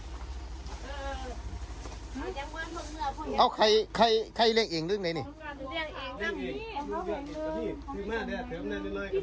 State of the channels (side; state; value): both; identical; correlation 1.00